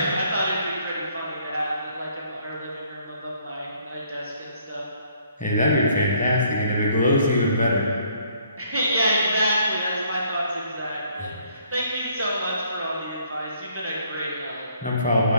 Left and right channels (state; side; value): inverted; both; correlation -0.64